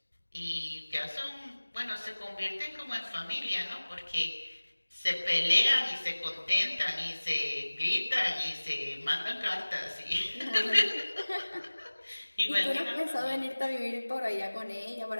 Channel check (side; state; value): both; inverted; correlation -1.00